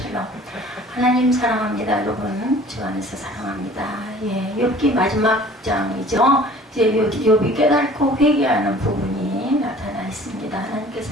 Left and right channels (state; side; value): normal; both; correlation 0.49